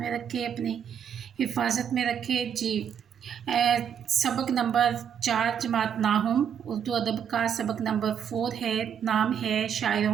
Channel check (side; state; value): left; quieter; 8.2 dB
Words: रखे, अपनी हिफाजत में रखे। जी, सबक नंबर 4 जमात नाहुम उर्दू अदब का सबक नंबर 4 है। नाम है